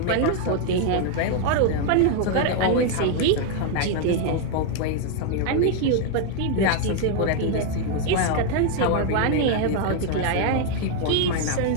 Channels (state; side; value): different; both; correlation 0.01